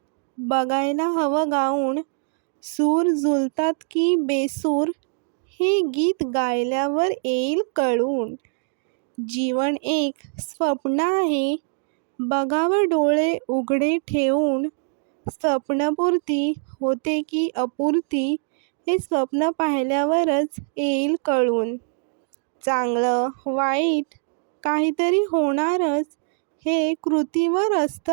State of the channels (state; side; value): silent; left; 63 dB below the other